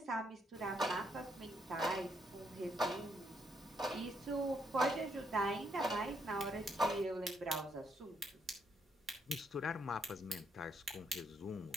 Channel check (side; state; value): both; normal; correlation 0.74